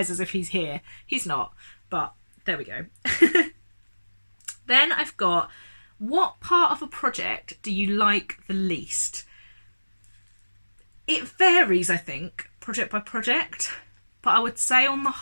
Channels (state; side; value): inverted; both; correlation -1.00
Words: as if he's here. He's not, but there we go. Then I've got, what part of a project do you like the least? It varies, I think, project by project, but I would say on the